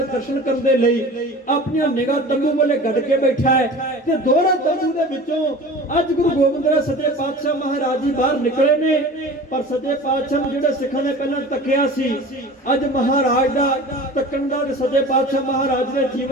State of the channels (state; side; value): normal; both; correlation 0.38